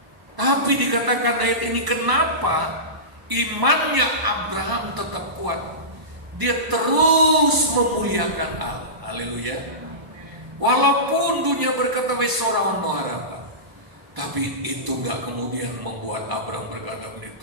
Tapi dikatakan ayat ini, kenapa imannya Abraham tetap kuat? Dia terus memuliakan Allah. Haleluya. Walaupun dunia berkata wes sorawan no harapan, tapi itu gak kemudian membuat Abraham berkata,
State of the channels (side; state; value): left; late; 1.0 ms